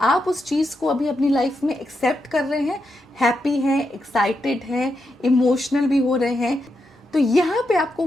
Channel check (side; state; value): both; normal; correlation 0.84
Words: उस चीज़ को अभी अपनी लाइफ में एक्सेप्ट कर रहे हैं, हैप्पी हैं, एक्साइटेड हैं, इमोशनल भी हो रहे हैं। तो यहाँ पे आपको